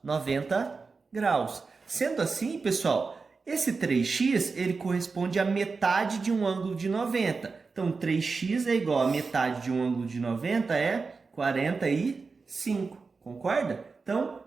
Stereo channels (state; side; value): quieter; left; 4.5 dB